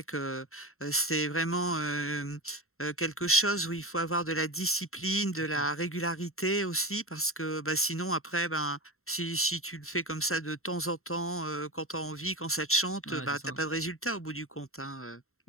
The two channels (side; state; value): right; late; 0.62 ms